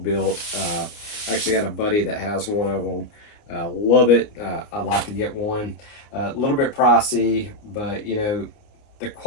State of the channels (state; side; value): late; right; 29 ms